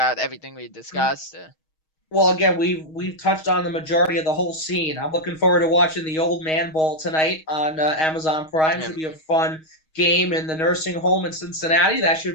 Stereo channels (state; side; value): late; right; 6.3 ms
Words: everything we discussed? Well, again, we've touched on the majority of the whole scene. I'm looking forward to watching the Old Man Bowl tonight on Amazon Prime. Yeah, Should be a fun game in the nursing home in Cincinnati. That